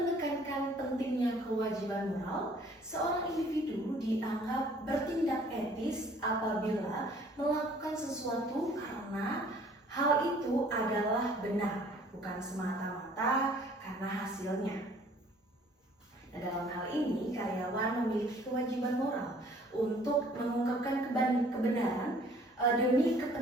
pentingnya kewajiban moral, seorang individu dianggap bertindak etis apabila melakukan sesuatu karena hal itu adalah benar, bukan semata-mata karena hasilnya. Nah, dalam hal ini, karyawan memiliki kewajiban moral untuk mengungkapkan kebenaran demi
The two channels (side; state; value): both; normal; correlation 0.56